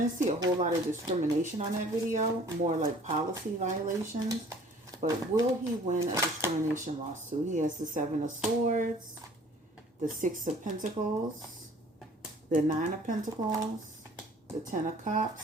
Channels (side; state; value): both; normal; correlation 0.52